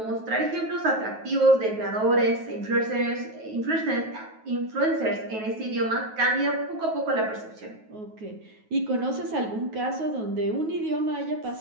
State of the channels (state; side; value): late; left; 9.3 ms